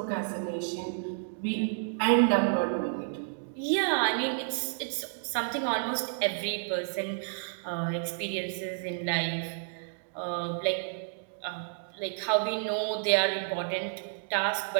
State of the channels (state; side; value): silent; left; digital silence